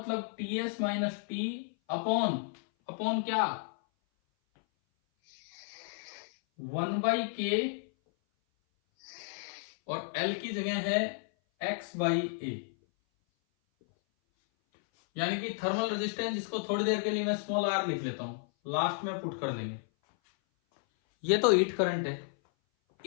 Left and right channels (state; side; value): silent; right; 56 dB below the other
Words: TS minus T upon, upon क्या, 1/k, और L की जगह है x/a, यानी कि थर्मल रेजिस्टेंस, जिसको थोड़ी देर के लिए मैं स्मॉल r लिख लेता हूं, लास्ट में पुट कर देंगे। ये तो हीट करंट है।